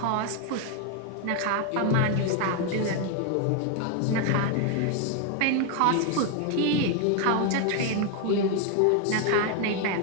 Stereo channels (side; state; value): both; different; correlation 0.01